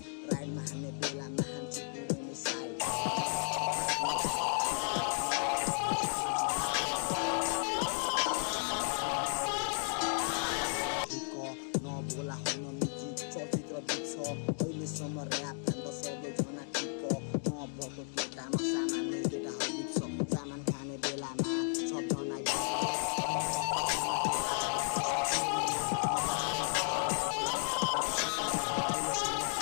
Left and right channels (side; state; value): right; silent; 55 dB below the other